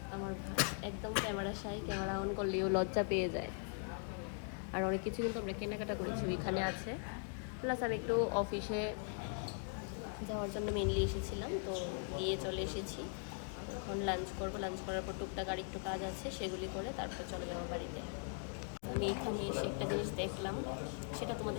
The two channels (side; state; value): right; silent; 51 dB below the other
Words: আমার ভাই, একদম ক্যামেরা শাই, ক্যামেরা অন করলেও লজ্জা পেয়ে যায়। আর অনেক কিছু কিন্তু আমরা কেনাকাটা করেছি, এখানে আছে। প্লাস আমি একটু অফিসে যাওয়ার জন্য মেনলি এসেছিলাম, তো গিয়ে চলে এসেছি। এখন লাঞ্চ করবো, লাঞ্চ করার পর টুকটাক আর একটু কাজ আছে, সেগুলি করে তারপর চলে যাবো বাড়িতে। আমি এখানে এসে একটা জিনিস দেখলাম, সেটা